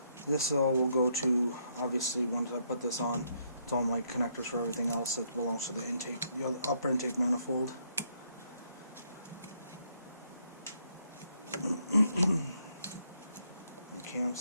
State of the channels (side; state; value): both; inverted; correlation -0.73